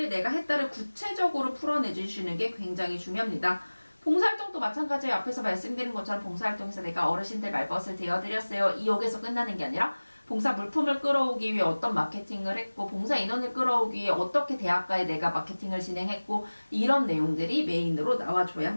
내가 했다를 구체적으로 풀어내주시는 게 굉장히 중요합니다. 봉사활동도 마찬가지예요. 앞에서 말씀드린 것처럼 봉사활동에서 내가 어르신들 말벗을 대어드렸어요. 이 역에서 끝나는 게 아니라 봉사 물품을 끌어오기 위해 어떤 마케팅을 했고 봉사 인원을 끌어오기 위해 어떻게 대학가에 내가 마케팅을 진행했고 이런 내용들이 메인으로 나와줘야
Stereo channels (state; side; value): inverted; both; correlation -1.00